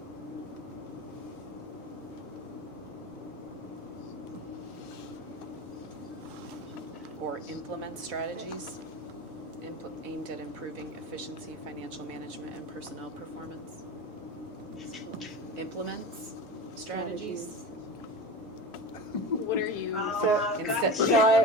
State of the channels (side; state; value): both; normal; correlation 0.29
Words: Or implement strategies aimed at improving efficiency, financial management, and personnel performance. Implements strategies. What are you? So, Instead-